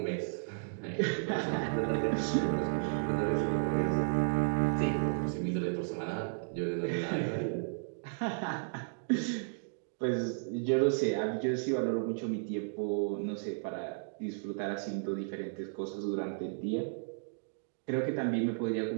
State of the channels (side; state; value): left; silent; digital silence